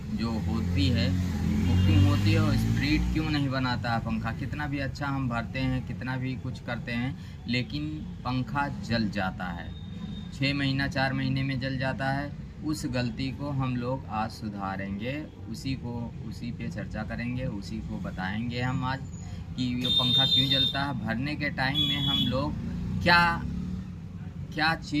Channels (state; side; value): identical; both; correlation 1.00